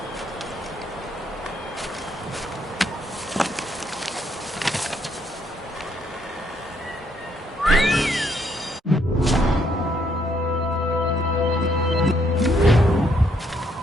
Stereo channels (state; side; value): normal; both; correlation 0.72